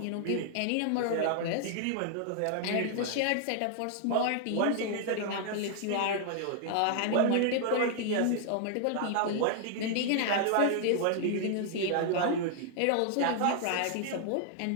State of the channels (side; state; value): both; different; correlation 0.00